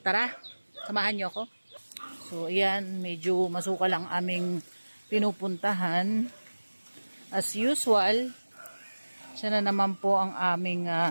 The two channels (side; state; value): both; inverted; correlation -1.00